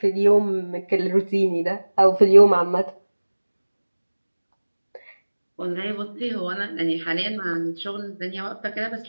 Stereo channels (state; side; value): inverted; both; correlation -1.00